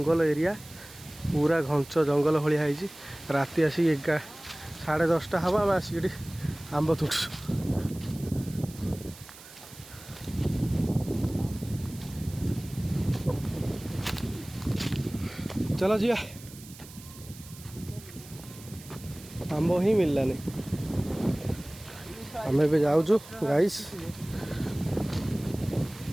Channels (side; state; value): right; noise; hiss, 18 dB below the sound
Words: एरिया पूरा घंच जंगल भाया है राति आसिक 10:30 हम आम आसिक आंब तुटू चलो जी आंब ही मिललानी आम ए जाऊँ गाइस